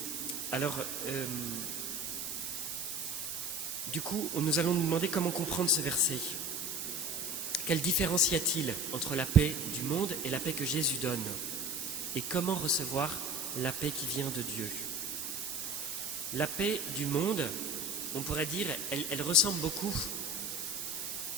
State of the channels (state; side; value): noise; right; hiss, 4 dB below the sound